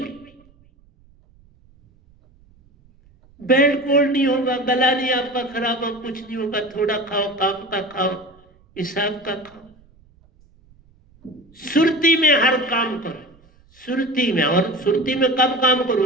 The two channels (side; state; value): right; noise; rumble, 30 dB below the sound